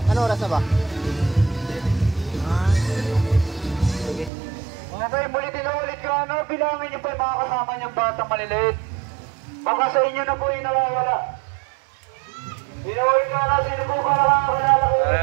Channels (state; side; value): drops out; left; at 4.3 s